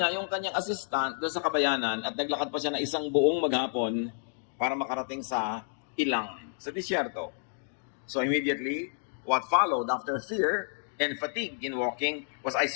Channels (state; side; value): silent; right; digital silence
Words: yung kanyang assistant doon sa kabayanan at naglakad pa siya na isang buong maghapon para makarating sa ilang, sa disyerto. So immediately, what followed after fear and fatigue in walking was